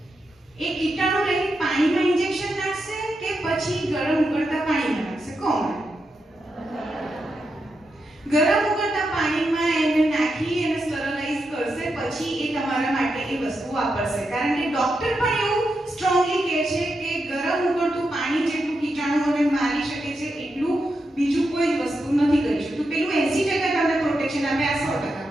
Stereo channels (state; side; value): normal; both; correlation 0.86